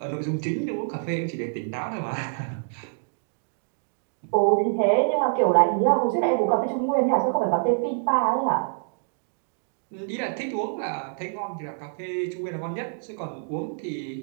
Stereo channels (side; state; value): left; silent; digital silence